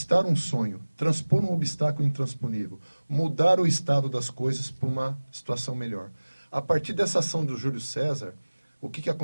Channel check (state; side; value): inverted; both; correlation -1.00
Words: um sonho, transpor um obstáculo intransponível, mudar o estado das coisas para uma situação melhor. A partir dessa ação do Júlio César, o que